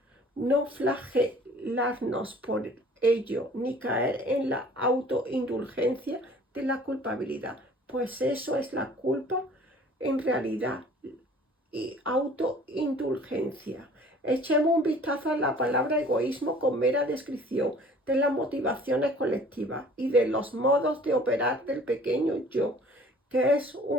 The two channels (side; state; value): both; normal; correlation 0.51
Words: no flagelarnos por ello, ni caer en la autoindulgencia de la culpabilidad, pues eso es la culpa en realidad y autoindulgencia. Echemos un vistazo a la palabra egoísmo con mera descripción de las motivaciones colectivas y de los modos de operar del pequeño yo, que es